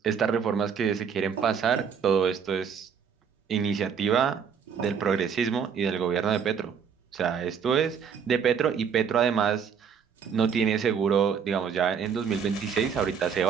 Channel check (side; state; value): left; quieter; 7.0 dB